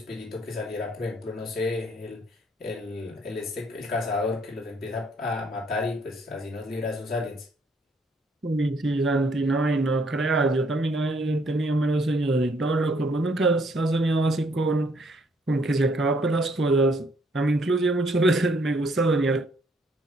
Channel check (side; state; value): both; normal; correlation 0.67